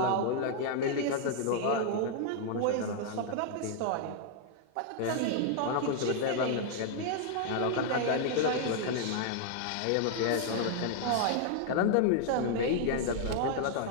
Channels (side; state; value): both; different; correlation 0.00